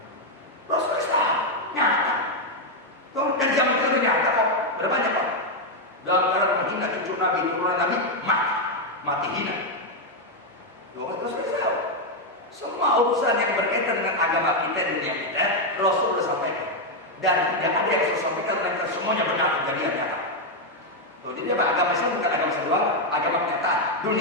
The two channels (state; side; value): normal; both; correlation 0.02